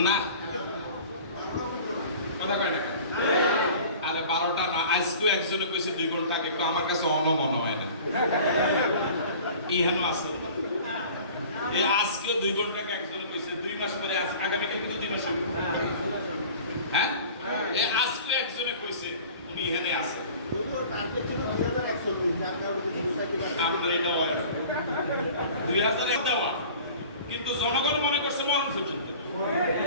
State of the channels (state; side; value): inverted; both; correlation -0.43